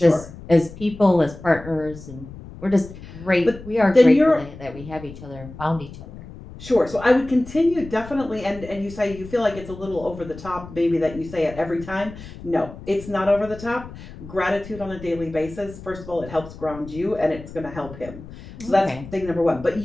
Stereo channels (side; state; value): left; noise; rumble, 15 dB below the sound